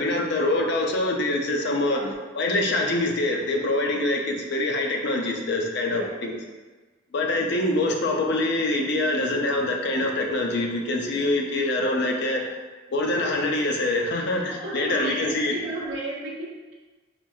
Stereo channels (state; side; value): normal; both; correlation 0.23